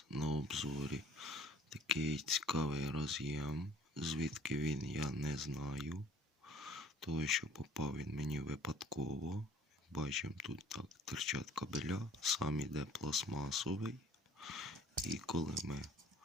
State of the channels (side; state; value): both; normal; correlation 0.54